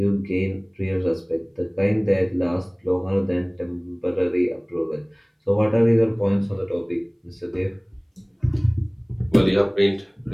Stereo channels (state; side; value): identical; both; correlation 1.00